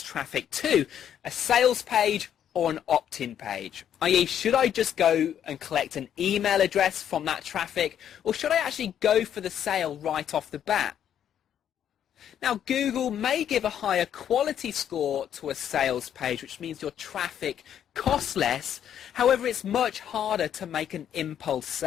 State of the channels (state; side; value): quieter; right; 9.7 dB